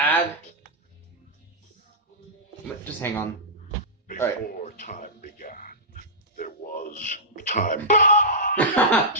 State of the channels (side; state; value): both; normal; correlation -0.14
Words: Just hang on. Before time began, there was time.